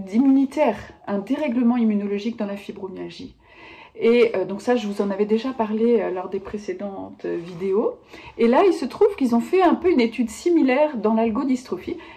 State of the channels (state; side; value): identical; both; correlation 1.00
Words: un dérèglement immunologique dans la fibromyalgie. Et donc ça, je vous en avais déjà parlé lors des précédentes vidéos. Et là, il se trouve qu'ils ont fait un peu une étude similaire dans l'algodystrophie.